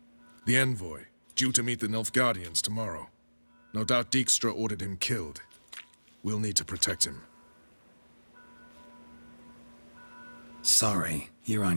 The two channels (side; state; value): both; inverted; correlation -1.00